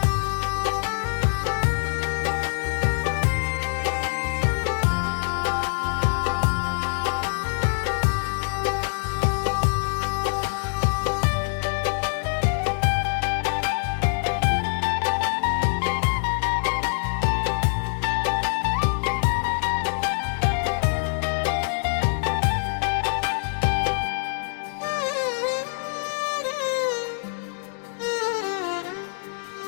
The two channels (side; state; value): right; silent; digital silence